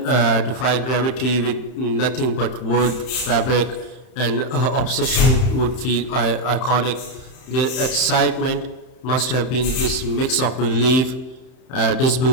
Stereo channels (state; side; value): late; right; 31 ms